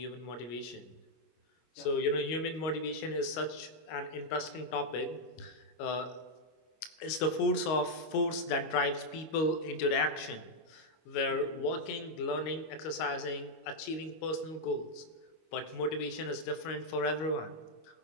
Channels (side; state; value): right; late; 25 ms